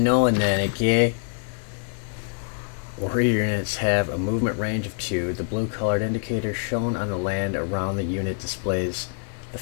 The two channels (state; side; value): silent; right; 57 dB below the other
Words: then, okay? Warrior units have a movement range of 2. The blue colored indicator shown on the land around the unit displays the